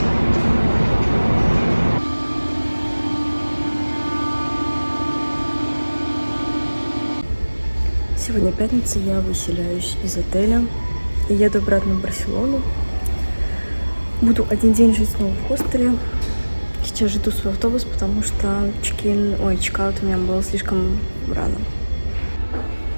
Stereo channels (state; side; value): inverted; both; correlation -1.00